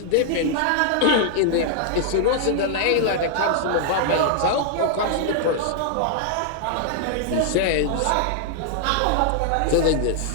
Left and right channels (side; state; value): both; different; correlation -0.01